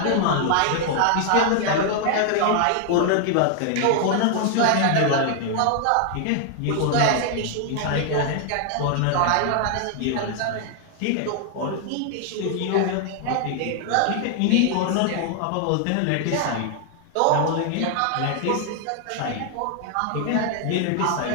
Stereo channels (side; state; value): both; different; correlation 0.00